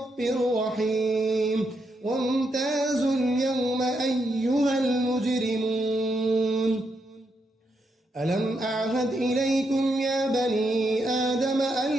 رحيم وامتازوا اليوم أيها المجرمون ألم أعهد إليكم يا بني آدم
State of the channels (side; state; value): both; normal; correlation 0.81